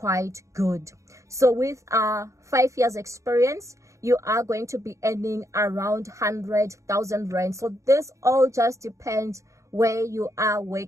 good. So with 5 years experience, you are going to be earning around 100,000 rand. So this all just depends where you are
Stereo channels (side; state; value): left; late; 0.15 ms